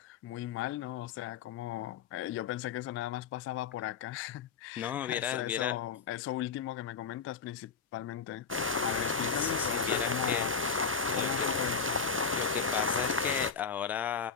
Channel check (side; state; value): right; quieter; 5.8 dB